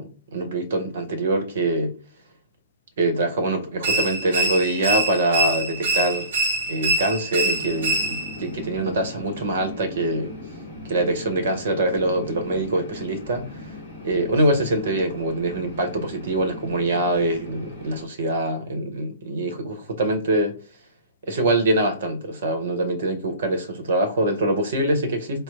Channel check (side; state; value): both; inverted; correlation -0.45